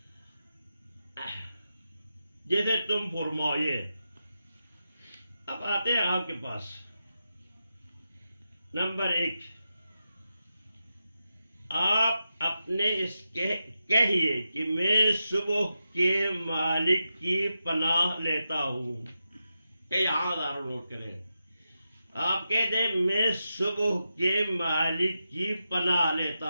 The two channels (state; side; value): inverted; both; correlation -0.89